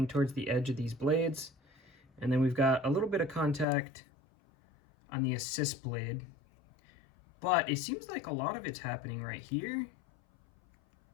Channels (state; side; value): drops out; right; at 3.7 s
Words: towards the edge of these blades, and then we've got a little bit of contact on the assist blade, but it seems like a lot of it's happening right here.